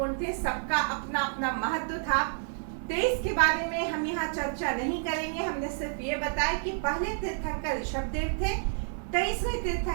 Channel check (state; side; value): silent; left; 58 dB below the other